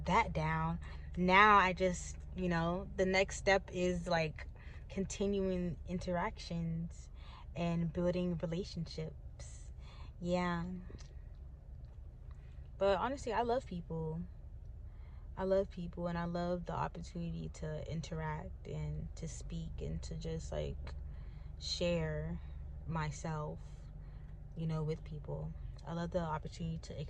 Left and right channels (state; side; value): identical; both; correlation 1.00